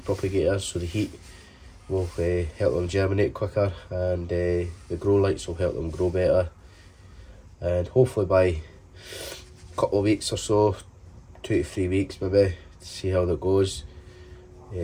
propagator, so the heat will help them germinate quicker, and the grow lights will help them grow better. And hopefully by a couple of weeks or so, 2 to 3 weeks maybe, to see how that goes,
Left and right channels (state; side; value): identical; both; correlation 1.00